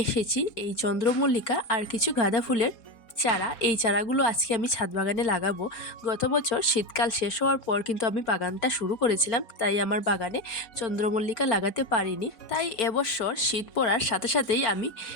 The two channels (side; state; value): right; late; 4.4 ms